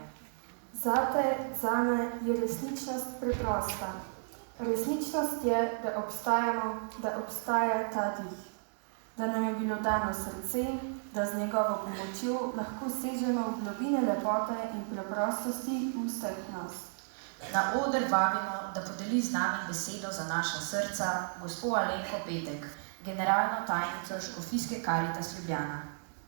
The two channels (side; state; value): left; silent; digital silence